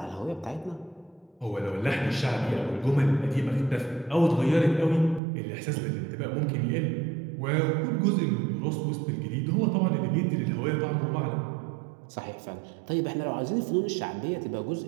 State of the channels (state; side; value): drops out; left; at 5.2 s